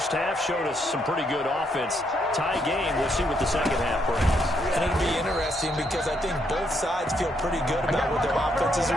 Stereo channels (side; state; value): both; normal; correlation 0.75